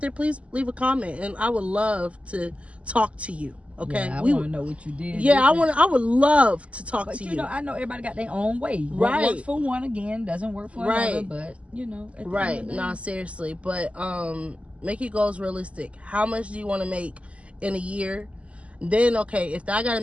there, please leave a comment, and I would love to talk to you. Okay, yeah, I want to know what you did. Yeah, I would love to talk to you. But you know, I know everybody got their own way. Right. What works for one again doesn't work for another. But you know, right? No, seriously. But make your goals realistic. How much do you want to make in a year? Then okay, if I got to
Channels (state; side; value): late; left; 0.061 ms